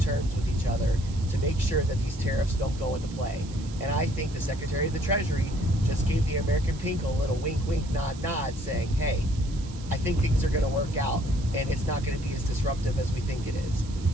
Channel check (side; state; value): right; noise; hiss, 19 dB below the sound